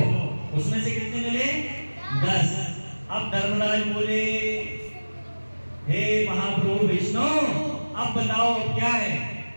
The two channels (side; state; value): both; inverted; correlation -1.00